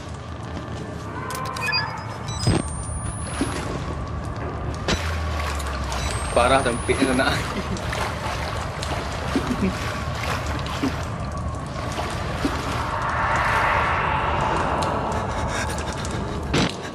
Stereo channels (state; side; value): identical; both; correlation 1.00